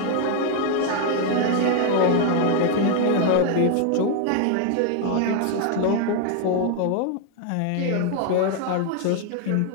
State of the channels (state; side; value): different; both; correlation 0.00